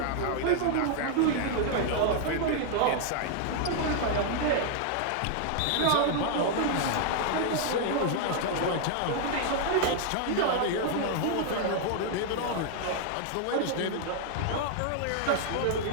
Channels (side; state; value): both; different; correlation 0.00